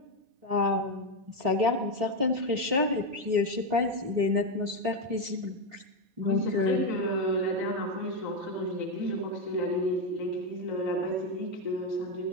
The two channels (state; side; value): late; left; 3.7 ms